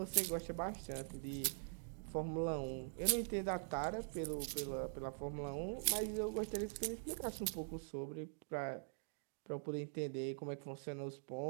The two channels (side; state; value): left; silent; digital silence